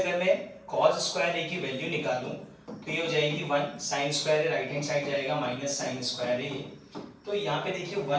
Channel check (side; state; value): both; identical; correlation 1.00